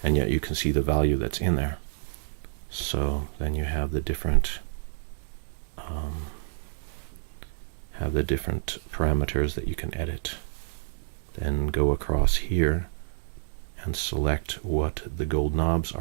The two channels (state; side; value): silent; left; digital silence